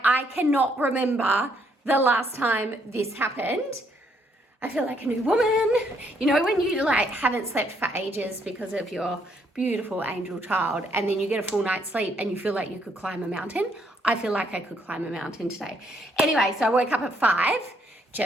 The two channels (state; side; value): normal; both; correlation 0.71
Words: I cannot remember the last time this happened. I feel like a new woman. You know, when you like haven't slept for ages because of your beautiful angel child, and then you get a full night's sleep and you feel like you could climb a mountain. I feel like I could climb a mountain today. Anyway, so I woke up at 5